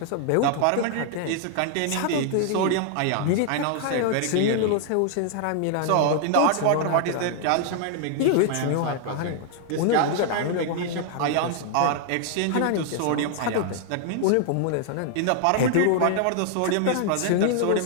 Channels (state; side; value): different; both; correlation 0.00